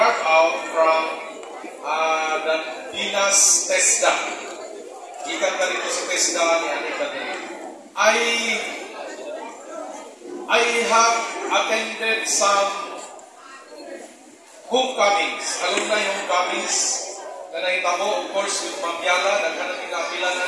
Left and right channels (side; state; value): both; identical; correlation 1.00